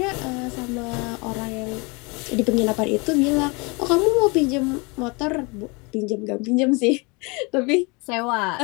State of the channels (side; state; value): right; quieter; 28.7 dB